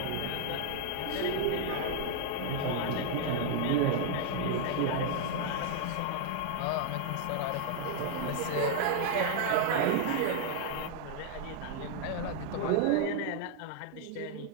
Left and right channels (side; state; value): both; different; correlation 0.00